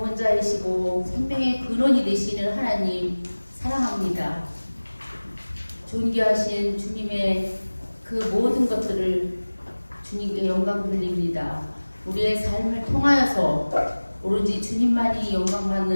생명의 근원이 되시는 하나님 사랑합니다. 존귀하신 주님의 그 모든 것들을 주님께 영광 돌립니다. 우리의 삶을 통하여서 오로지 주님만이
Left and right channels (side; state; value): both; inverted; correlation -1.00